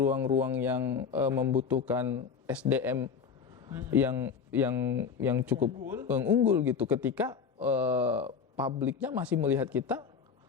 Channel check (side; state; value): right; quieter; 6.2 dB